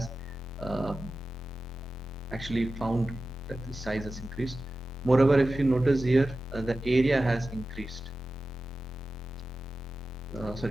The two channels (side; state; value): both; normal; correlation 0.94